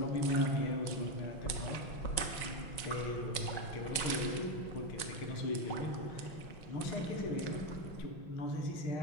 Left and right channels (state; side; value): late; right; 5.5 ms